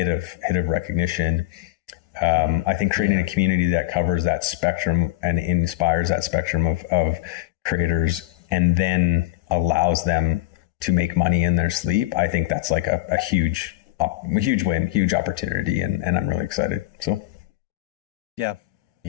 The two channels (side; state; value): right; quieter; 18.0 dB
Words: of recognition. I think creating a community that covers that spectrum and inspires that spectrum of creators and then allows them to make money in their sleep. I think that's like a huge win, huge opportunity. And I'm really excited. So. Yeah.